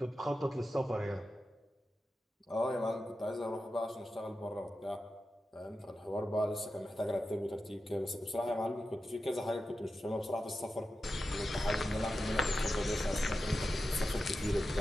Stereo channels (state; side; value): normal; both; correlation 0.92